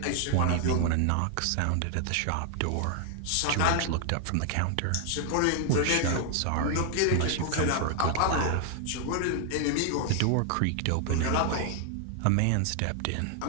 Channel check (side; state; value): both; different; correlation 0.00